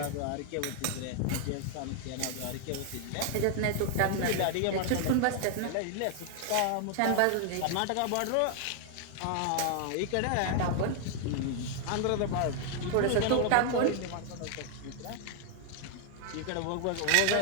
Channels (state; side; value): different; both; correlation 0.00